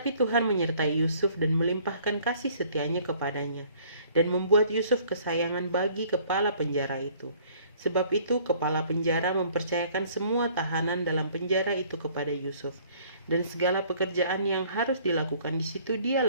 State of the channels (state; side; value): inverted; both; correlation -0.57